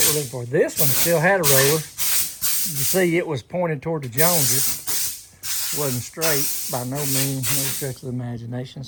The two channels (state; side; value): identical; both; correlation 1.00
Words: we're looking for. This one still had a roller. You see it was pointed toward the Joneses. It wasn't straight by no means, no stretch of the imagination,